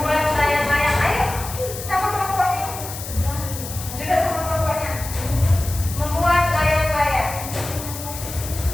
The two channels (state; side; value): noise; left; hiss, 10 dB below the sound